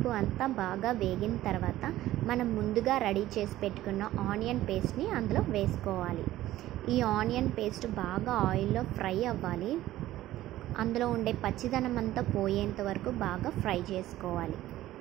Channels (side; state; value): left; quieter; 14.9 dB